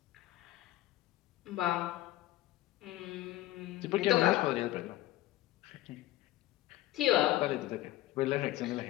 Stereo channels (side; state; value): right; quieter; 15.6 dB